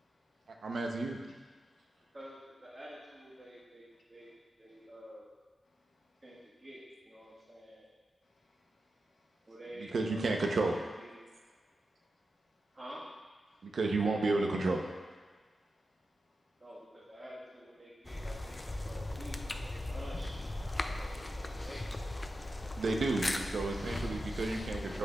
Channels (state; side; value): normal; both; correlation 0.90